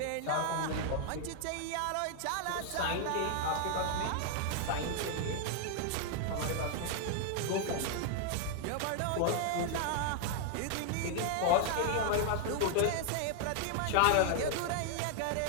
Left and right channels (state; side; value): different; both; correlation 0.00